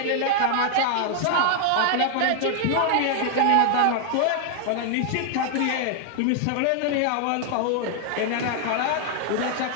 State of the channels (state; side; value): different; both; correlation 0.00